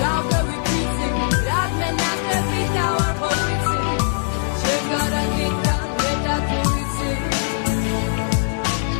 down the repeating that man not the big out of everything she gotta get down with that everything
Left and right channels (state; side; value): silent; right; digital silence